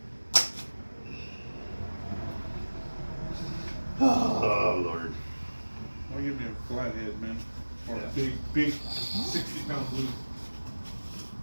Oh, Lord. Why give me a flathead, man? Or Yeah. a big 60-pound blue.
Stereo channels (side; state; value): both; inverted; correlation -1.00